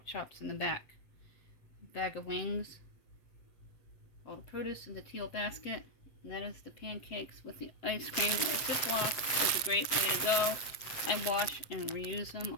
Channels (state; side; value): late; right; 7.8 ms